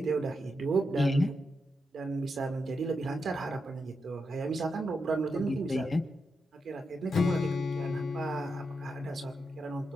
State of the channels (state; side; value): normal; both; correlation 0.85